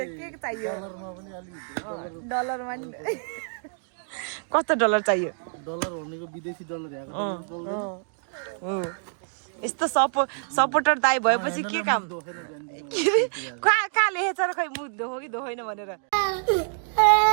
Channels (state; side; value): silent; left; 60 dB below the other